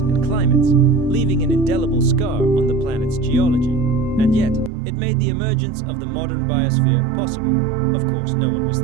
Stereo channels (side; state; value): left; drops out; at 4.7 s